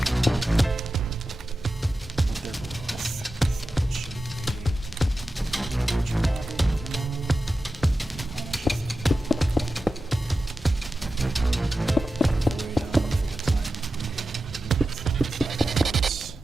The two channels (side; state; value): both; normal; correlation 0.92